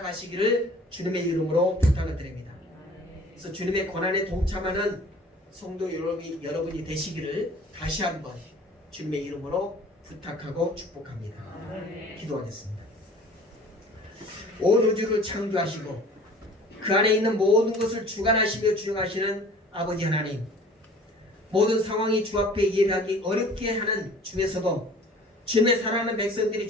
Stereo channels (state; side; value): normal; both; correlation 0.48